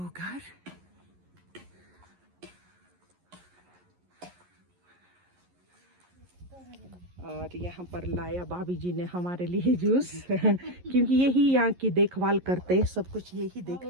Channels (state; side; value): late; left; 11 ms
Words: घर। और यहाँ पर लाया भाभी जी ने हमारे लिए जूस क्योंकि यही यहाँ की देखभाल करते हैं, सब कुछ यही